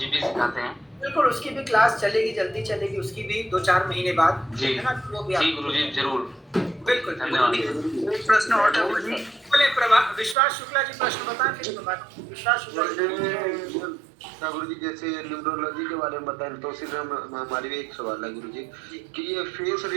भी सिखाते हैं? बिल्कुल, उसकी भी क्लास चलेगी, जल्दी चलेगी, उसकी भी 2-4 महीने बाद, जी है ना? वो भी जी गुरु जी जरूर। बिल्कुल धन्यवाद। एक प्रश्न और था गुरु जी। बोले विश्वास शुक्ला जी प्रश्न बताएं, फिर विश्वास शुक्ला जी। गुरु जी जैसे न्यूमरोलॉजी के बारे में बताएं, तो सीधे हमारी भी एक सवाल है गुरु जी कि ये फेस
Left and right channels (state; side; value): drops out; left; at 10.4 s